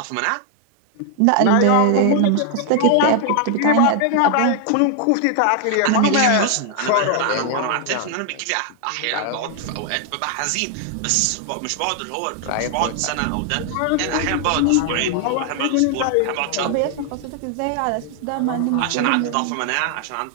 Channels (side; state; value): both; different; correlation 0.00